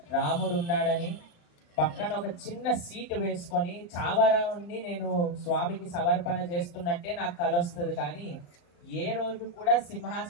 రాముడు ఉన్నాడని, పక్కన ఒక చిన్న సీటు వేసుకొని చావరాన్ని నేను స్వామికి సమర్పణ చేస్తున్నట్టే నాకు కల వస్తుంది. కానీ ఏ రోజు కూడా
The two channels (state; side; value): late; right; 35 ms